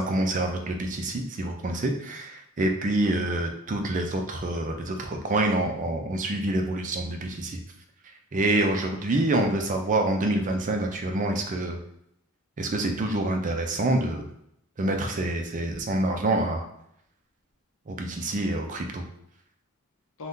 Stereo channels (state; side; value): normal; both; correlation 0.48